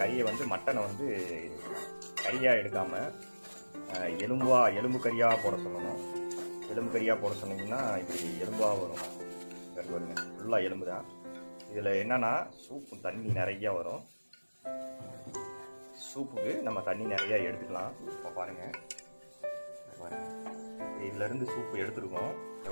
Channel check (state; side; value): inverted; both; correlation -1.00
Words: வந்து மட்டனை வந்து கறியாக எடுக்காமல் எலும்பு கறியாக போட சொல்லணும். எலும்பு கறியாக போட சொன்னீங்கன்னா இப்படி எலும்பாக வரும். பாருங்க, ஃபுல்லாக எலும்பு தான். இதில் என்னென்னா சூப்பு தண்ணி நிறையா வரும். சூப்புக்கு நம்ம தண்ணி நிறையா எடுத்துக்கலாம். இப்போ பாருங்கள், இதிலேருந்து சூப்பு எடுத்துருக்கோம்.